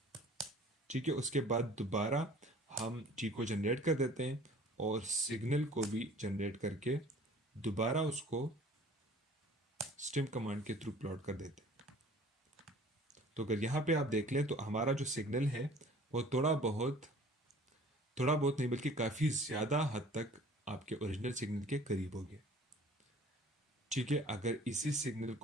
ठीक है। उसके बाद दोबारा हम टी को जनरेट कर देते हैं और सिग्नल को भी जनरेट करके दोबारा उसको स्टेम कमांड के थ्रू प्लॉट कर देते हैं। तो अगर यहाँ पे आप देख लें तो हमारा जो सिग्नल है वो थोड़ा बहुत नहीं बल्कि काफ़ी ज़्यादा हद तक आपके ओरिजिनल सिग्नल के करीब हो गया, ठीक है। अगर इसी सिग्नल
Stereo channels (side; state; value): both; normal; correlation 0.49